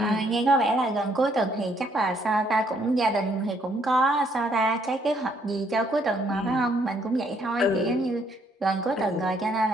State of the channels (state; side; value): normal; both; correlation 0.68